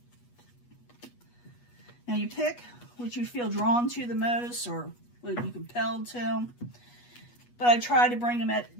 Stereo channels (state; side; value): late; right; 8.3 ms